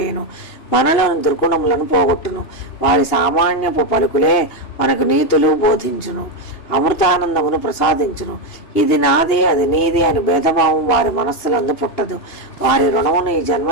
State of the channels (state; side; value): late; right; 2.8 ms